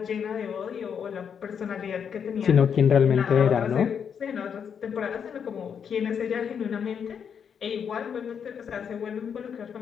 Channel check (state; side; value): quieter; right; 7.4 dB